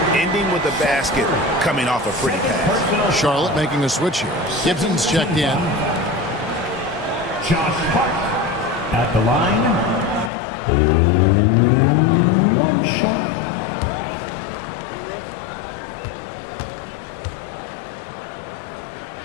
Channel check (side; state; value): right; drops out; at 10.3 s